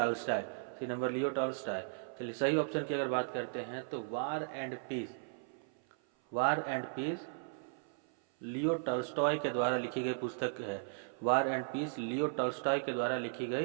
चलिए सही ऑप्शन की अगर बात करते हैं तो War and Peace Leo Tolstoy के द्वारा लिखी गई पुस्तक है। War and Peace Leo Tolstoy के द्वारा लिखी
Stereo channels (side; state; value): left; silent; 54 dB below the other